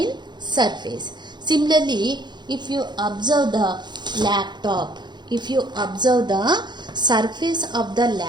surface. Similarly, if you observe the laptop, if you observe the surface of the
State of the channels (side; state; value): left; late; 0.21 ms